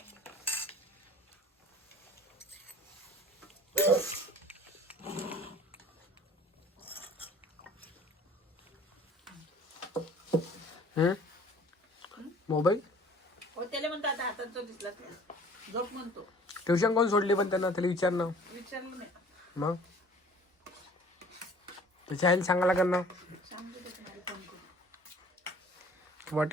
मोबाईल हो त्याला म्हणतो आता हातात जो दिसला नाही झोप म्हणतो ट्युशन कोण सोडली पण त्यांना त्याला विचार ना विचारलं नाही मग त्याच्या आईला सांगायला लागेल ना सांगतो ते तुम्हाला फोन करून किंवा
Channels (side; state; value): both; normal; correlation 0.50